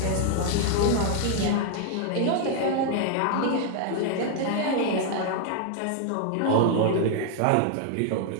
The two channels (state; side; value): different; both; correlation 0.00